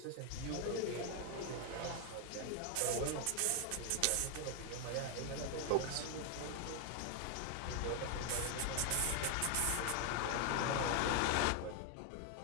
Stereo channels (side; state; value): both; different; correlation 0.01